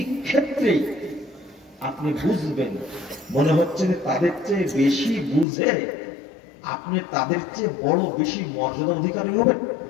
ক্ষেত্রে আপনি বুঝবেন, মনে হচ্ছে যে তাদের চেয়ে বেশি বুঝে আপনি তাদের চেয়ে বড় বেশি মর্যাদা অধিকারী হবেন।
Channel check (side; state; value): right; drops out; at 5.5 s